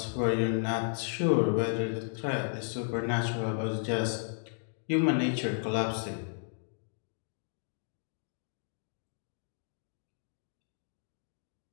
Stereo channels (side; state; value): right; silent; digital silence